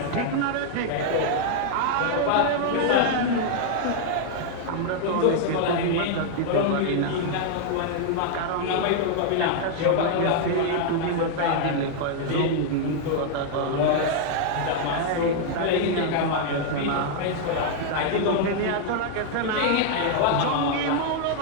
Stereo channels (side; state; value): both; different; correlation 0.00